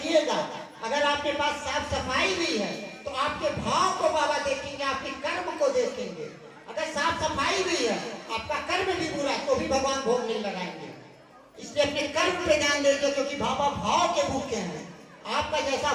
अगर आपके पास साफ सफाई भी है तो आपके भाव को बाबा देखेंगे, आपके कर्म को देखेंगे। अगर साफ सफाई भी है, आपका कर्म भी बुरा तो भी भी भगवान भोग नहीं लगाएंगे। इसलिए अपने कर्म पे ध्यान दीजिए, क्योंकि बाबा भाव के भूखे हैं। आपका जैसा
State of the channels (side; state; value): both; identical; correlation 1.00